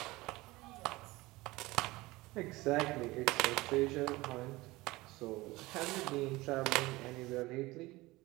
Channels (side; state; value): left; quieter; 20.4 dB